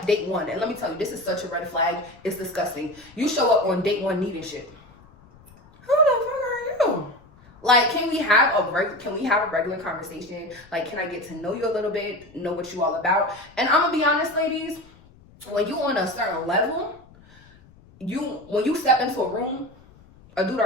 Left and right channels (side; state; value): left; noise; rumble, 26 dB below the sound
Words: one, and let me tell you, this is such a red flag. It's disgusting. You show up on date one needing shit. Who the fuck are you? Like, can we have a regular conversation? Like, can I get to know you a little bit, know what you all about? And I'm gonna be honest, ladies, when you on a certain level, when you step into a room, a dude